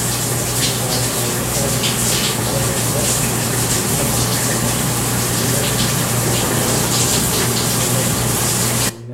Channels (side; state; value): both; identical; correlation 1.00